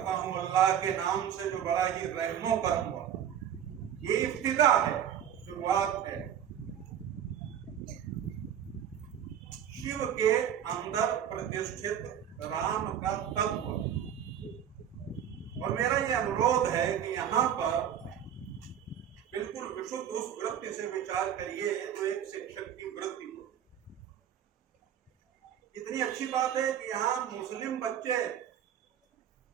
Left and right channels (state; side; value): quieter; left; 9.4 dB